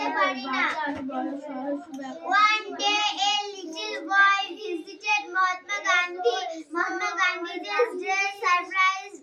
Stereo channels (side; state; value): both; identical; correlation 1.00